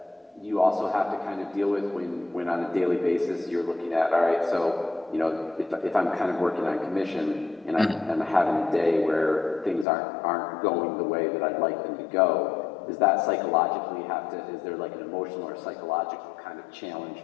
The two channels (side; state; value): right; drops out; at 9.9 s